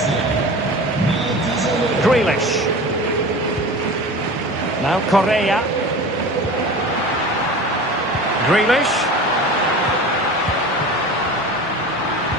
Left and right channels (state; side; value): normal; both; correlation 0.35